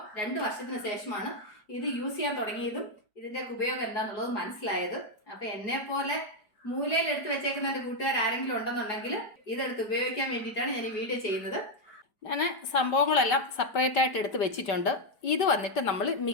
2 വർഷത്തിന് ശേഷമാണ് ഇത് യൂസ് ചെയ്യാൻ തുടങ്ങിയതും ഇതിൻ്റെ ഉപയോഗം എന്താണെന്നുള്ളത് മനസ്സിലായത്. അപ്പം എന്നെ പോലെ മൂലയിൽ എടുത്ത് വെച്ചേക്കുന്ന എൻ്റെ കൂട്ടുകാർ ആരെങ്കിലും ഉണ്ടെന്നുണ്ടെങ്കിൽ ഇതെടുത്ത് ഉപയോഗിക്കാൻ വേണ്ടിയിട്ടാണ് ഞാൻ ഈ വീഡിയോ ചെയ്യുന്നത്. ഞാൻ സംഭവങ്ങളെല്ലാം സെപ്പറേറ്റ് ആയിട്ട് എടുത്ത് വെച്ചിട്ടുണ്ട്. ഇത് വന്നിട്ട് നമ്മൾ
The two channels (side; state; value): right; late; 4.8 ms